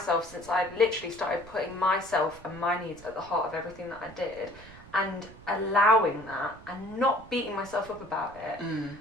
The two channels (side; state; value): right; noise; rumble, 20 dB below the sound